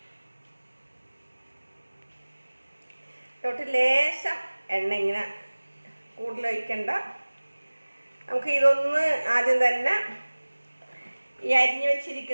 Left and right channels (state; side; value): inverted; both; correlation -1.00